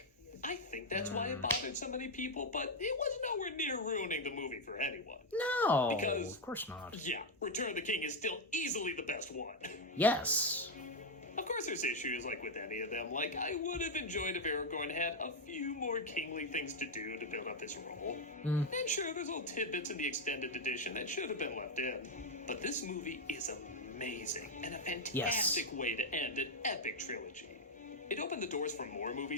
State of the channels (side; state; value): both; normal; correlation 0.03